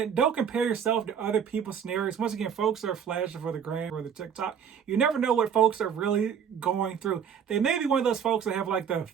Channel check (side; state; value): left; quieter; 7.7 dB